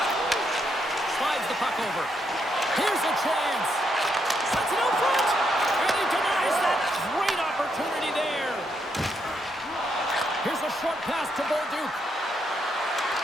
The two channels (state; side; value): normal; both; correlation 0.78